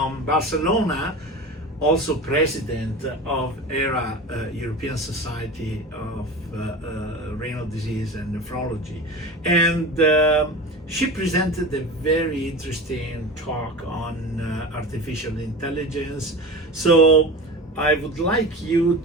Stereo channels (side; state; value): both; normal; correlation 0.30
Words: Barcelona, also president of ERA, European Society of Renal Disease and Nephrology. And she presented a very interesting talk on artificial intelligence. So I would like you